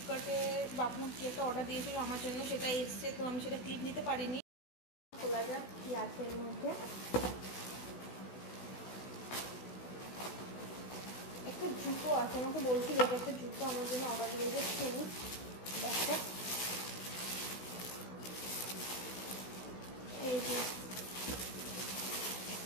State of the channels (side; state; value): right; late; 16 ms